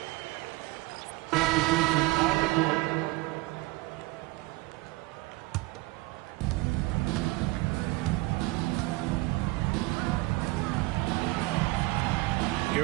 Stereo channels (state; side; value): quieter; left; 21.7 dB